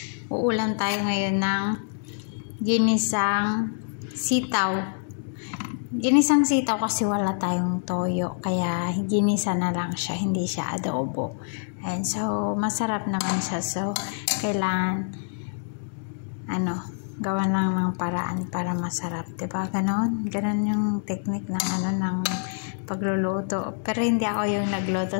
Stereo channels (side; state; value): right; silent; digital silence